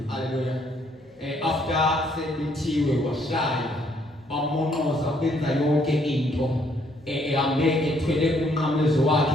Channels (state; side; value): normal; both; correlation 0.68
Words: haleluya after sebethiwe washaya bamonqoza benza yonke into ehambe ethwele umnqamlezo wakhe